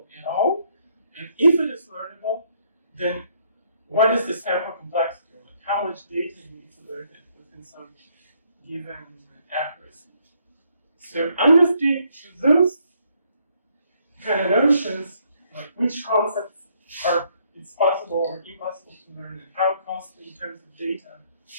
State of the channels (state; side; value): inverted; both; correlation -0.69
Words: at all. And if it is learnable, then what is the sample complexity? Like how much data you need to learn it within some given accuracy. So understanding those kind of notions, like which concepts it's possible or impossible to learn, and how costly in terms of data